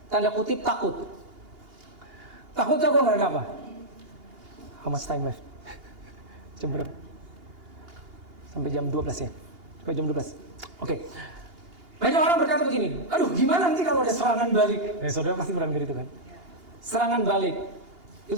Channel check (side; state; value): left; late; 2.8 ms